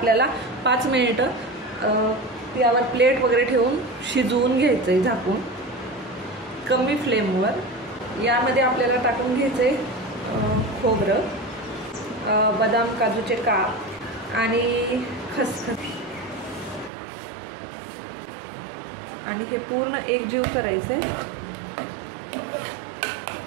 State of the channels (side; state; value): left; drops out; at 16.9 s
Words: 5 मिनिटं यावर प्लेट वगैरे ठेवून शिजवून घ्यायचंय झाकून कमी फ्लेमवर. यामध्ये आपल्याला टाकून घ्यायचंय खोबरं, बदाम काजूचे काप आणि खसखस आणि हे पूर्ण एकजीव करायचंय.